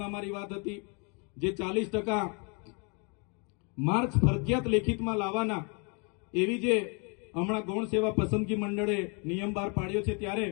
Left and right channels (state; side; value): quieter; right; 35.2 dB